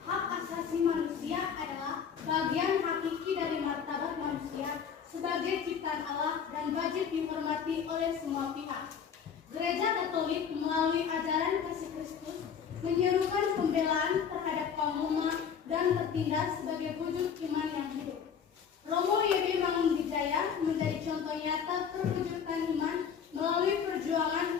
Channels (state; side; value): quieter; right; 7.3 dB